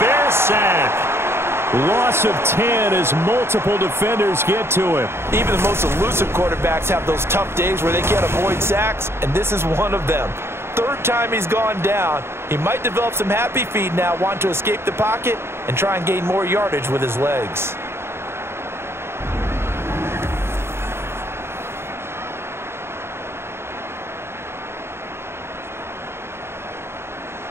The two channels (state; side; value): late; left; 0.12 ms